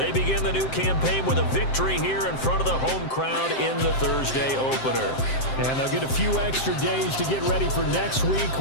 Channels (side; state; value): right; late; 7.7 ms